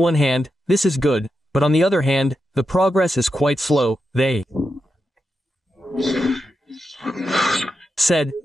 hand, this is good, but on the other hand, the progress is quite slow. They said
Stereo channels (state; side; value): normal; both; correlation 0.87